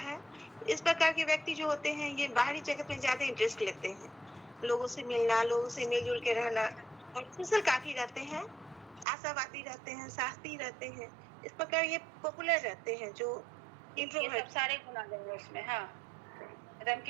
इस प्रकार के व्यक्ति जो होते हैं ये बाहरी जगत में ज्यादा इंटरेस्ट लेते हैं, लोगों से मिलना, लोगों से मिलजुल के रहना, और सोशल काफी रहते हैं, आशावादी रहते हैं, साहसी रहते हैं। इस प्रकार ये पॉपुलर रहते हैं जो ये इंट्रोवर्ट। सब सारे गुण आ जाएंगे उसमें। हाँ, एकदम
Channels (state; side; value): drops out; left; at 9.1 s